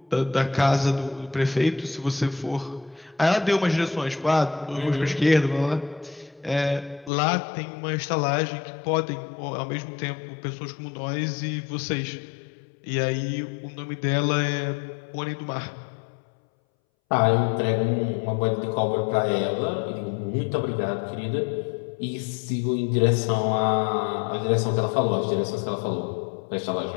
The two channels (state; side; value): drops out; right; at 7.1 s